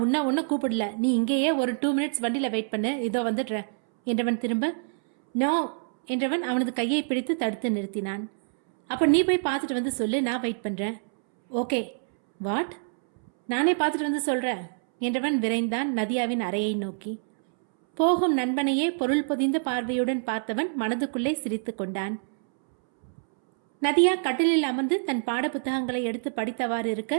உன்னை கூப்பிடல, நீ இங்கேயே ஒரு 2 மினிட்ஸ் வண்டியில் வெயிட் பண்ணு, இதோ வந்துடுறேன் என்றவன் திரும்ப. நோ என்றவன் அவனது கையை பிடித்து தடுத்து நிறுத்தினான். அப்போ நீ போய் பார்த்துட்டு வந்து சொல்லு, நான் வெயிட் பண்ணுறேன். ஓகே. வாட்? நானே பார்த்துட்டு வந்து சொல்கிறேன் என்றவன் விரைந்தான் நதியாவின் அறையை நோக்கி. போகும் நண்பனையே பொருள் பொதிந்த பார்வையுடன் பார்த்தவன் மனதுக்குள்ளே சிரித்து கொண்டான். நதியா கட்டிலில் அமர்ந்து தன் பாட புத்தகங்களை எடுத்து படித்தவாறு இருக்க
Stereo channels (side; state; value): left; silent; 61 dB below the other